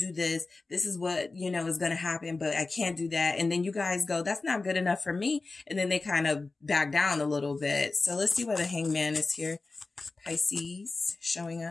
this. This is what, is going to happen, but I can't do that. And then you guys go, that's not good enough for me. And then they kind of back down a little bit. So let's see where the Hangman is here. Pisces showing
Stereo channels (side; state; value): right; quieter; 3.6 dB